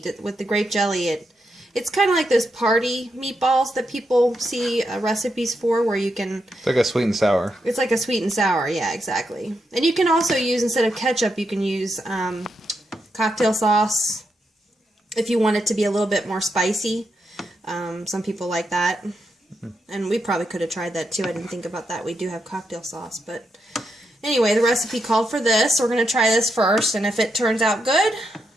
With the grape jelly, it's kind of like those party meatballs that people see recipes for, where you can... It's like a sweet and sour. It's like a sweet and sour, yeah, exactly. And you can also use, instead of ketchup, you can use cocktail sauce if you want it to be a little bit more spicy. Some people like that. And we probably could have tried that too. I didn't think about that. We do have cocktail sauce, but... Anyway, the recipe called for this. We're going to try this first, and if it turns out good,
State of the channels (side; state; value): both; normal; correlation 0.83